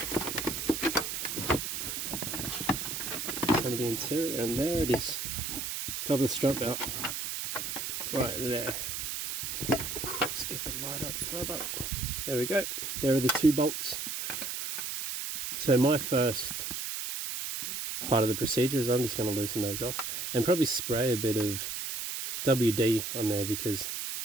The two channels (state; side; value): noise; right; hiss, 4 dB below the sound